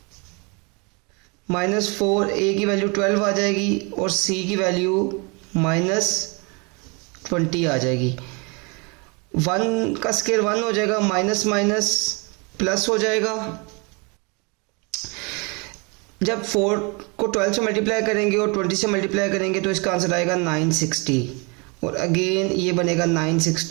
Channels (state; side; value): quieter; left; 31.0 dB